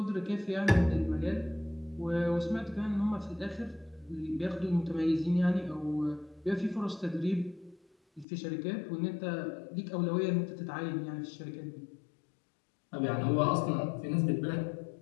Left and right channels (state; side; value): drops out; right; at 8.2 s